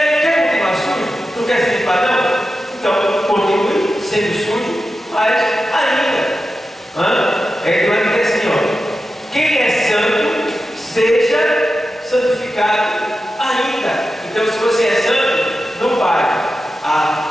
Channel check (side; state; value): both; normal; correlation 0.91